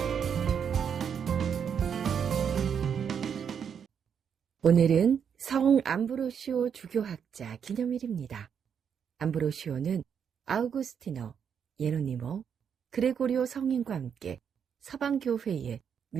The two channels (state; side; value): quieter; left; 7.5 dB